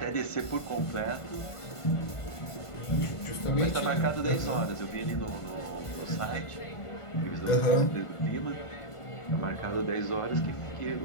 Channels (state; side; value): late; right; 1.5 ms